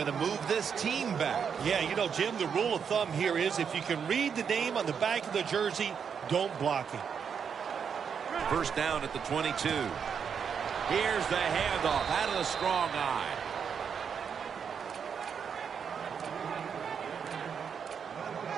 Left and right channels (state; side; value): quieter; left; 7.0 dB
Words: to move this team back. Yeah, you know, Jim, the rule of thumb here is if you can read the name on the back of the jersey, don't block him. First down at the 22. Here's the handoff out of the strong eye.